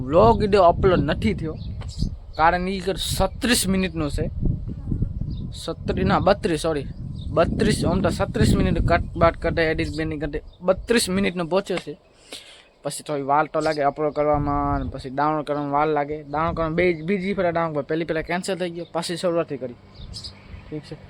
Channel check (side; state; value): both; identical; correlation 1.00